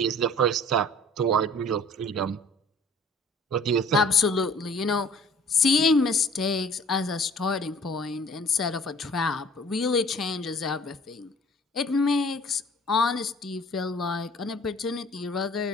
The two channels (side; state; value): both; normal; correlation 0.51